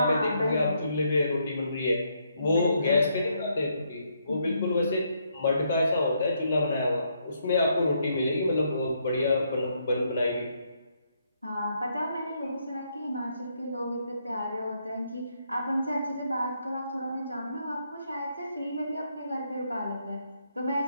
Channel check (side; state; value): both; inverted; correlation -0.75